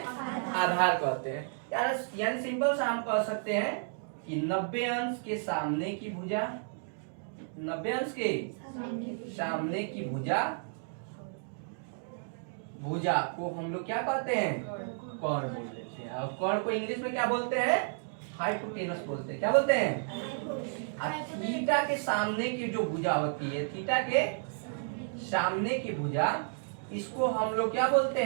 आधार कहते हैं। यानी सिंपल सा हम कह सकते हैं कि 90 अंश के सामने की भुजा, 90 अंश के सामने की भुजा को हम लोग क्या कहते हैं? कोण बोल देते हैं। और कोण को इंग्लिश में क्या बोलते हैं? हाइपोटेनस बोलते हैं। क्या बोलते हैं? थीटा के सामने की जो भुजा होती है, थीटा के सामने की भुजा, इसको हम लोग क्या बोलते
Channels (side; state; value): left; silent; digital silence